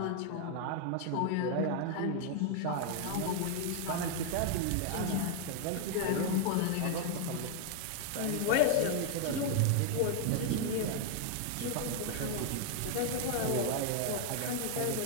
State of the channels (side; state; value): both; different; correlation 0.00